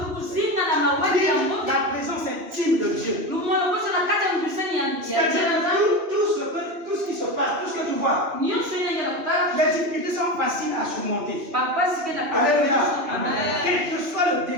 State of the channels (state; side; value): late; left; 2.9 ms